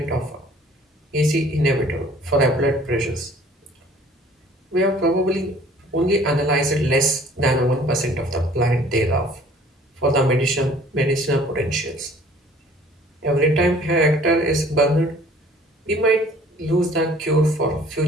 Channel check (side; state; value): both; normal; correlation 0.53